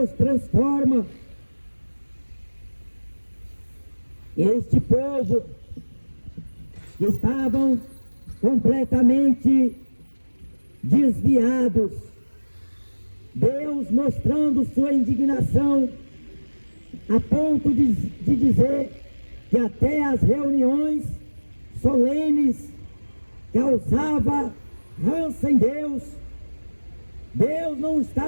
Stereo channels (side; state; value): both; inverted; correlation -1.00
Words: transforma. Este povo que estavam completamente desviados, Deus mostrando sua indignação, a ponto de dizer que até as reuniões solenes causava ranço em Deus. Deus não